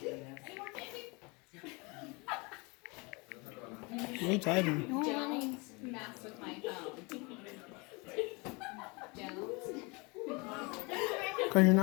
You're typing. Don't mess with my phone. Don't. Because you're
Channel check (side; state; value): right; quieter; 28.2 dB